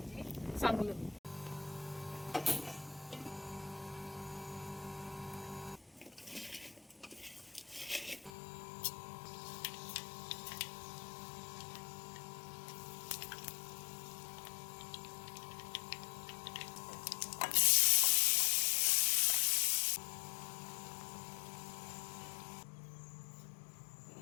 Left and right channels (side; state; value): right; drops out; at 8.3 s